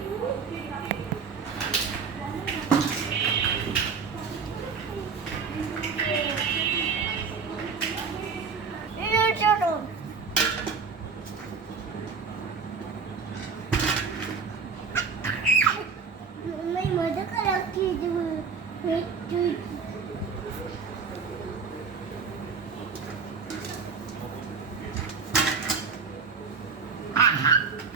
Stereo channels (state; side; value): quieter; left; 5.5 dB